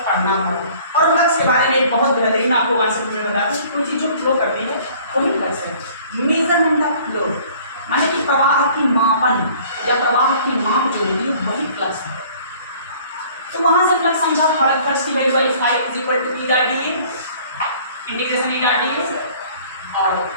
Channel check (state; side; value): inverted; both; correlation -0.53